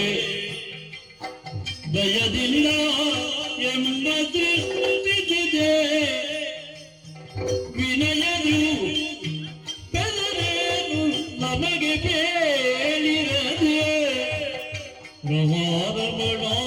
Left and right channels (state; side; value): identical; both; correlation 1.00